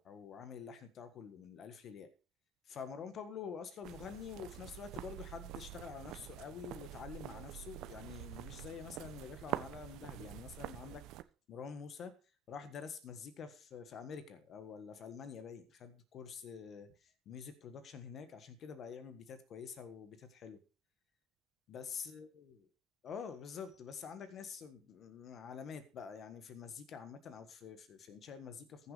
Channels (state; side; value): normal; both; correlation 0.44